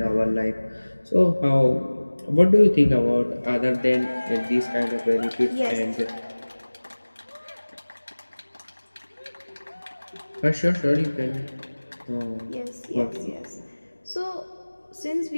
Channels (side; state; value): both; inverted; correlation -1.00